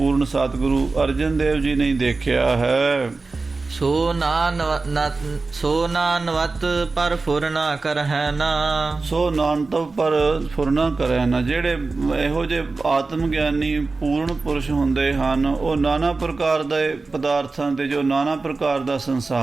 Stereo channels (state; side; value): quieter; left; 3.8 dB